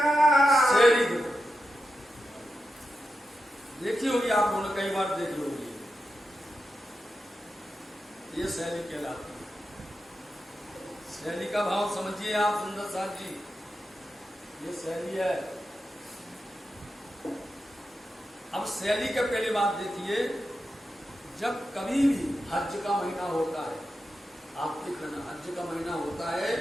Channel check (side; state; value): both; normal; correlation 0.89